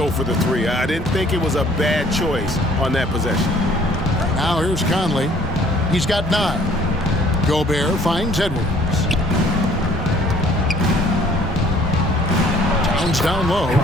for the 3. I didn't think it was a bad choice on that possession. Now here's Conley. He's got 9. Gobert finds Edwards. Towns down low.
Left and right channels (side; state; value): both; normal; correlation 0.57